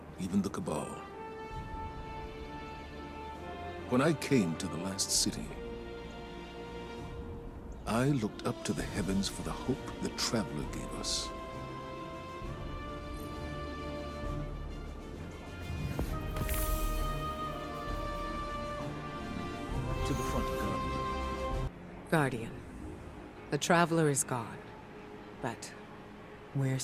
even the Cabal. When I came to the last city, I looked up to the heavens for the hope the Traveler gave us. To the front, Guardian. Guardian. The Traveler is gone, but we're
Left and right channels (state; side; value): identical; both; correlation 1.00